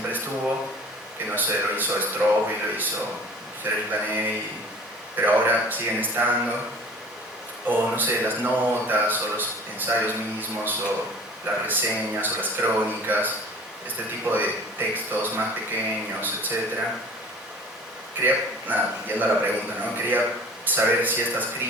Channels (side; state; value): both; normal; correlation 0.45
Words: estuvo, que no sé, lo hizo Straub y lo hizo Serge Lanet, pero ahora siguen estando, o no sé, las notas, o los ensayos mismos, o las reseñas, o las crónicas, este tipo de textos más pequeños, etc. Quería, yendo a la pregunta, ¿no? Quería saber si estas